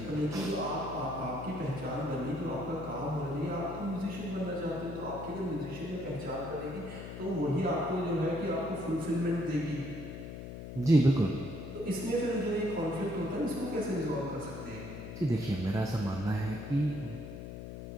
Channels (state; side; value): noise; left; hum, 9 dB below the sound